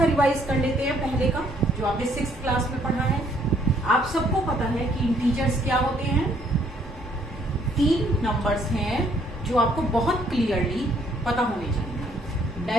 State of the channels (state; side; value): normal; both; correlation 0.65